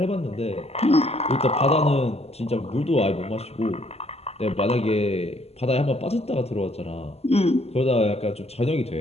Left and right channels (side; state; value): right; late; 0.30 ms